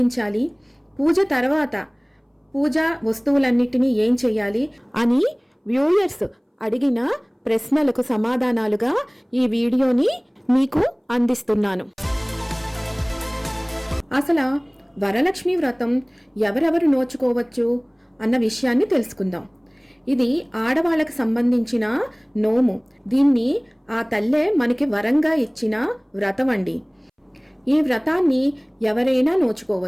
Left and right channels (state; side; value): identical; both; correlation 1.00